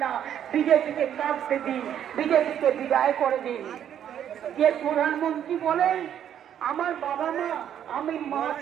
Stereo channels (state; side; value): quieter; left; 9.8 dB